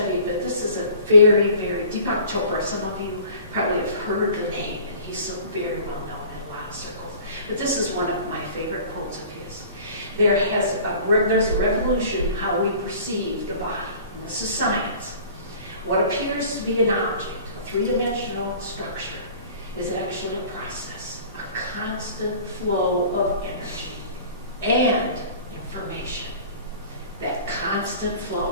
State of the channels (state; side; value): inverted; both; correlation -0.46